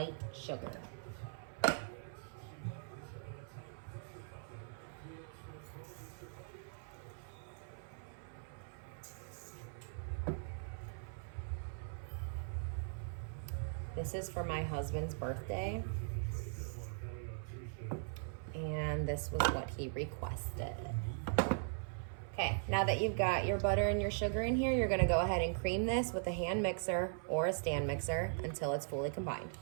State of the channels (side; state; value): left; silent; 51 dB below the other